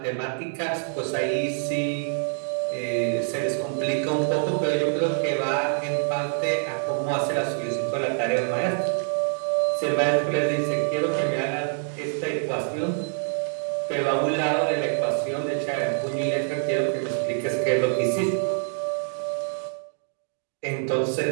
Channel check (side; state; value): left; silent; digital silence